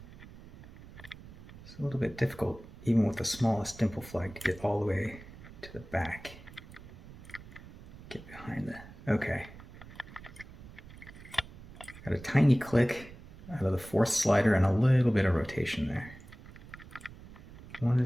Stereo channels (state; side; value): noise; right; rumble, 17 dB below the sound